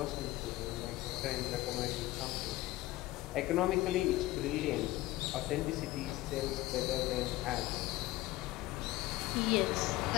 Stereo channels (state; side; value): quieter; right; 17.7 dB